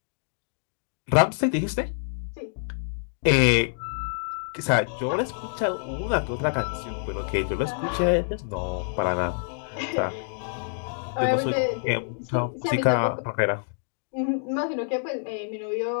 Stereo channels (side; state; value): right; silent; digital silence